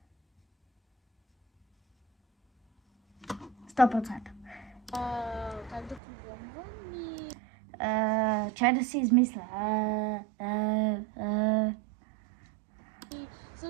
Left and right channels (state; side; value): drops out; left; at 6.0 s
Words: 100%. Как да програмвам и... Чай да си измисля. И